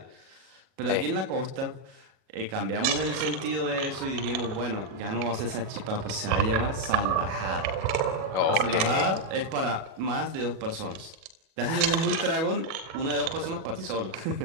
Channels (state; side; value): late; left; 37 ms